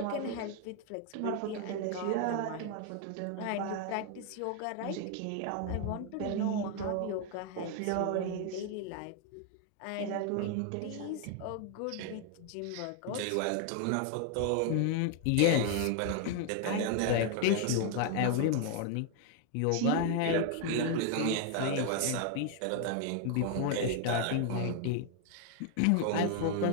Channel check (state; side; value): different; both; correlation 0.00